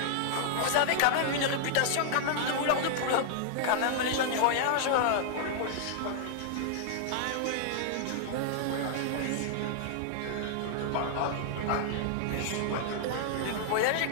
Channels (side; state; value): both; different; correlation -0.01